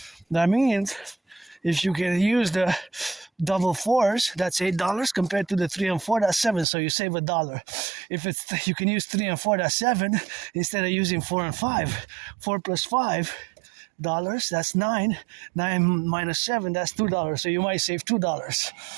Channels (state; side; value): drops out; left; at 6.7 s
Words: that means if you can use the double 4s, that's $8 compared to the 3 and 4, that's 7. So you save $1. If you can use 3 and 4, that's 7 instead of using 4 and 5. 4 plus 5 dollars, that's 9. 9 minus 7, that's $2. So you might save $2.